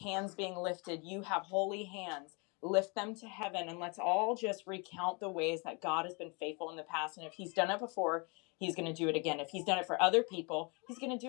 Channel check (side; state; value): right; quieter; 31.1 dB